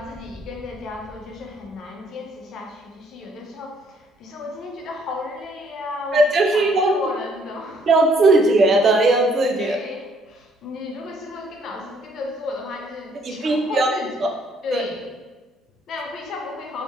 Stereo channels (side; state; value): both; normal; correlation 0.65